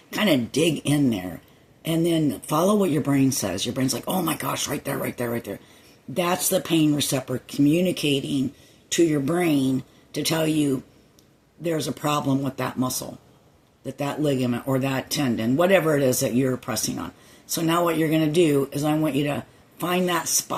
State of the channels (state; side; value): identical; both; correlation 1.00